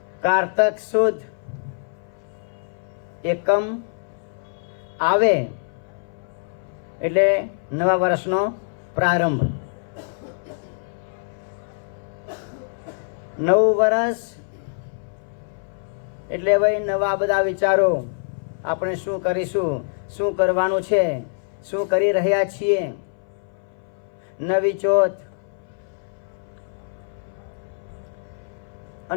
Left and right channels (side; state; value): right; silent; 59 dB below the other